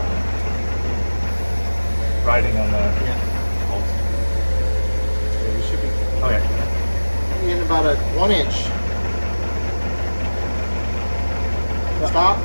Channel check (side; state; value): both; inverted; correlation -1.00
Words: Riding on the. Yeah. Yeah, we should be Okay. in about a 1 inch. Stop.